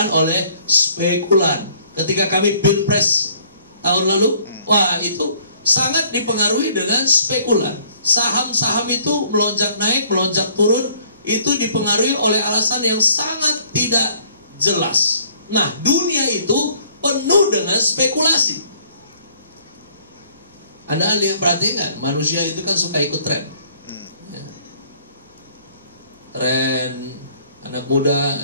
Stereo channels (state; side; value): inverted; both; correlation -0.58